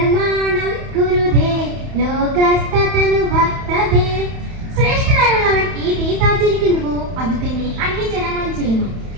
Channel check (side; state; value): left; late; 31 ms